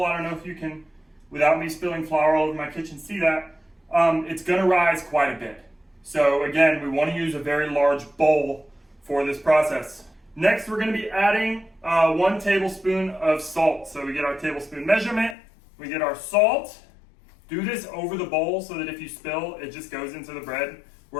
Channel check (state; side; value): drops out; right; at 15.4 s